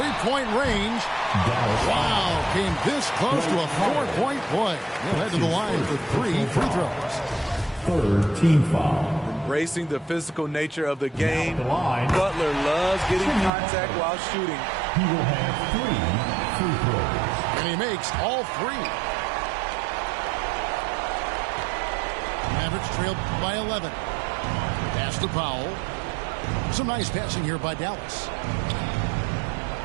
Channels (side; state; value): left; drops out; at 13.5 s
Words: range. Wow, came this close to a 4-point play. He'll head to the line for 3 free throws. Third team foul. Embracing the physical nature of the game, Butler loves getting contact while shooting. He will have 3 free throws. And he makes all 3. Mavericks trail by 11. Pass to Powell. Some nice passing here by Dallas.